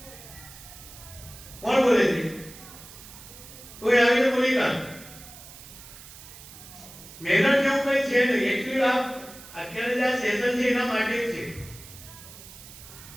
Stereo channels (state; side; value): noise; right; hiss, 17 dB below the sound